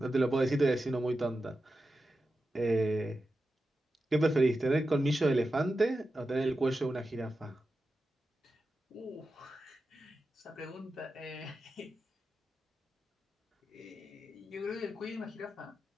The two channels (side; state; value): both; normal; correlation 0.91